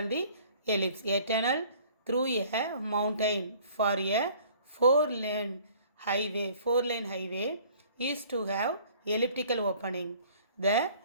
the ellipse. A tunnel through a mountain for a four-lane highway is to have elliptical opening. The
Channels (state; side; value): inverted; both; correlation -0.53